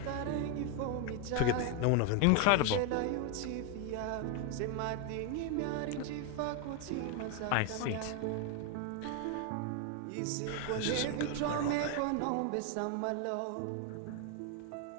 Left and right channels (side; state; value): both; different; correlation 0.01